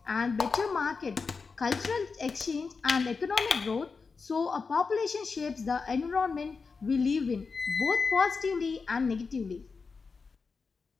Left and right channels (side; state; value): right; quieter; 4.8 dB